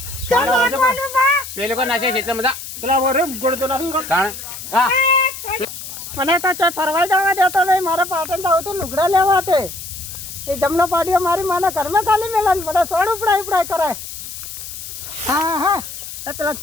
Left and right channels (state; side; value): noise; left; hiss, 10 dB below the sound